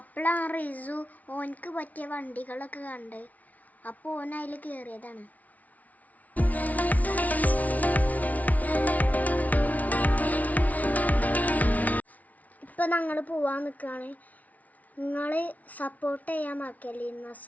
റിസു ഓനക്ക് പറ്റിയ വണ്ടികളൊക്കെ കണ്ട്. അപ്പോൾ ഓൻ അതിൽ കയറിയതാണ്. ഇപ്പം ഞങ്ങൾ പോവാൻ നിൽക്കുകയാണ്. നിങ്ങൾ സപ്പോർട്ട് ചെയ്യാൻ മറക്കല്ലേ.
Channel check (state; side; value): late; right; 0.072 ms